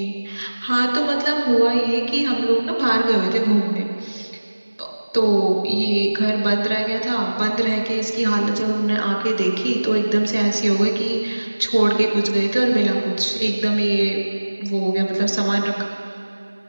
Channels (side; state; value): both; inverted; correlation -1.00